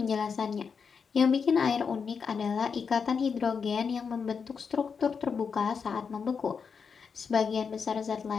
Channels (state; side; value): quieter; right; 5.9 dB